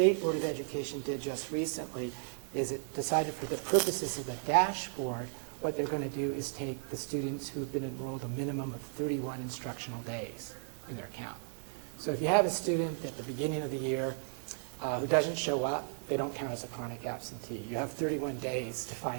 Board of Education did just recently is it decided for the purposes of the dashboard, what they're going to do is take the students who've been enrolled a minimum of 31 instructional days in their count. So if you have a student at the beginning of the year who doesn't show up, they don't count as a chronic absentee. You have 31 days to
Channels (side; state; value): left; silent; 55 dB below the other